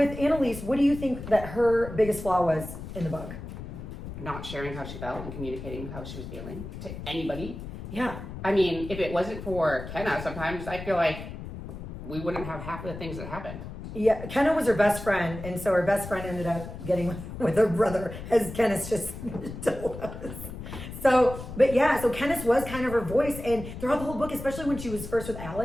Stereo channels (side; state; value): left; noise; rumble, 10 dB below the sound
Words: Annalise, what do you think that her biggest flaw was in the book? Not sharing how she felt and communicating how she was feeling to anybody. Yeah. I mean, if it wasn't for Kenna, sometimes I feel like we wouldn't have half of the things that happened. Yeah, Kenna was her best friend, and so her best friend ended up getting with her brother, as Kenneth just told us. So, but yeah, so Kenneth was kind of her voice, and throughout the whole book, especially when she was first with